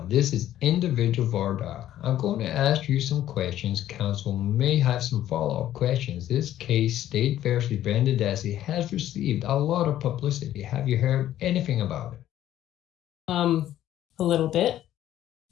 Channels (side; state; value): right; quieter; 12.5 dB